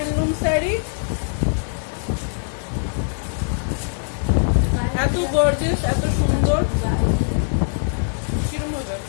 শাড়ি, এত গর্জিয়াস, এত সুন্দর। কিরকম হবে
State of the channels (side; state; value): right; silent; 64 dB below the other